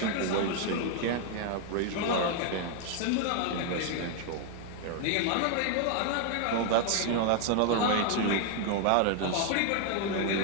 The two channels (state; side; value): different; both; correlation 0.00